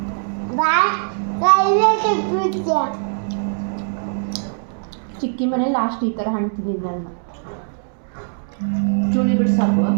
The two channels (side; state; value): left; silent; digital silence